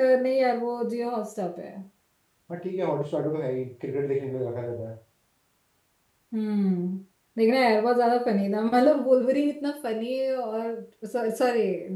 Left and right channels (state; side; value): identical; both; correlation 1.00